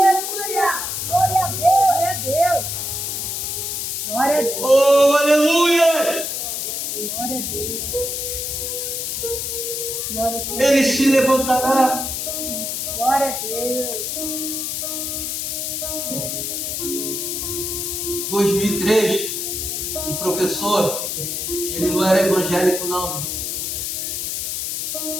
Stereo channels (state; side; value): noise; left; hiss, 3 dB below the sound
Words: Glória a Deus. Glória a Deus. Glória a Deus. Oh, aleluia! Glória a Deus. Glória a Deus. Ele se levantará. Glória a Deus. 2003, um professor, ele não era evangélico não,